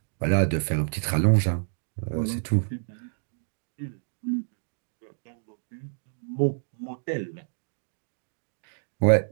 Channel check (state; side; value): silent; left; digital silence